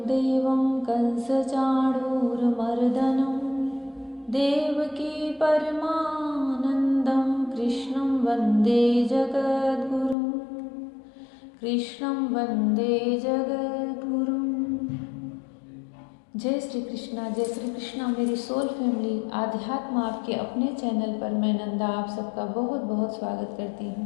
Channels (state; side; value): drops out; right; at 10.2 s